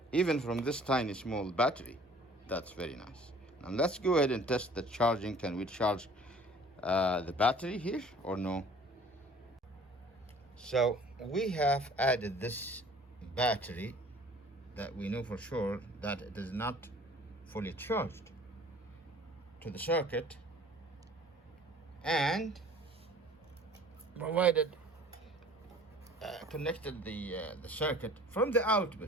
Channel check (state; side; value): normal; both; correlation 0.50